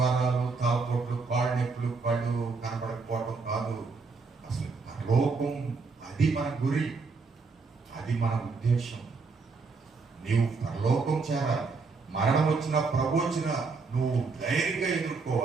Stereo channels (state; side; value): quieter; left; 4.4 dB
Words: తాపొట్లు, కాళ్ళు నొప్పులు, పళ్ళు కనబడకపోవడం కాదు. అసలు లోకం అది మన గురి, అది మన ఉద్దేశం. నీవు పరలోకం చేరాలి. మరణం వచ్చినా ప్రభు వచ్చినా నువ్వు ధైర్యంగా